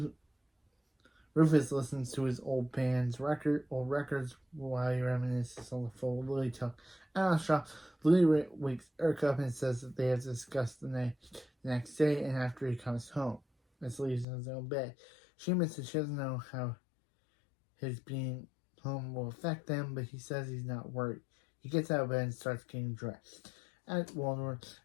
listens to his old records while he reminisces on the full Lily talk. At the shop, Lily wakes Eric up and says that they have to discuss the next day and after he comes home. Miss leaves in his own bed. She admits that she doesn't know how his being home will affect them, but he says he's not worried. He gets out of bed and starts getting dressed. At Waldorf,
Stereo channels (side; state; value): right; drops out; at 14.2 s